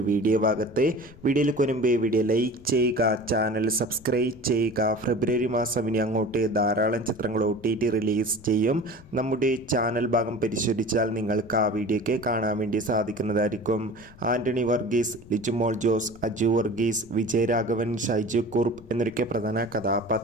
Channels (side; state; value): left; noise; rumble, 22 dB below the sound